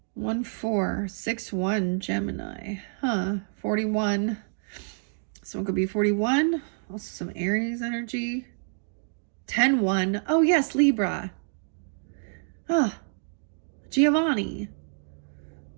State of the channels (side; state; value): left; silent; 59 dB below the other